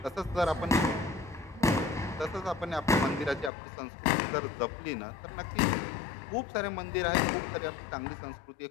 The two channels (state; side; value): drops out; right; at 3.5 s